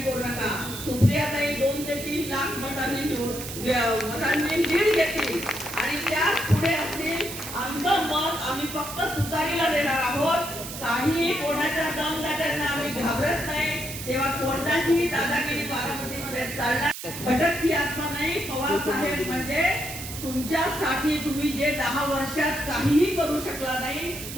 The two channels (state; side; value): noise; right; hiss, 9 dB below the sound